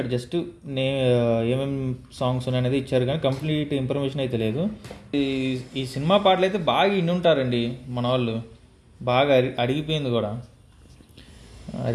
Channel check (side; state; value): both; identical; correlation 1.00